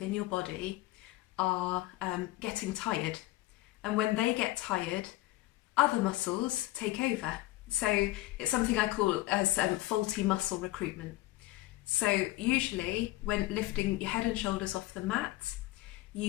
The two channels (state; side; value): quieter; right; 17.9 dB